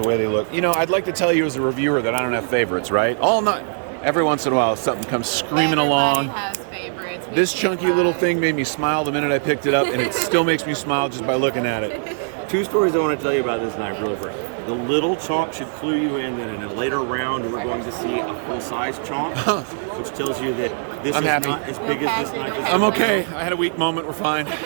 way they look. You know, I'd like to tell you as a reviewer that I don't have favorites, right? Every once in a while, something comes screaming along. Has favorites. This chunky little thing made me smile the minute I picked it up, and it still makes me smile just by looking at it. 2 stories I want to tell you about this knife really quick. The little chonk should clue you in that in a later round we're going to see a full-size chonk, which tells you that this is not as big as this knife is. I'm okay. I had a weak moment. We're fine.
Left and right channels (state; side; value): silent; left; digital silence